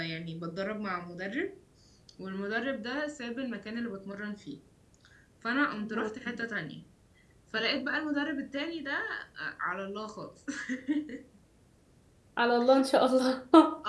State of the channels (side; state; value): both; identical; correlation 1.00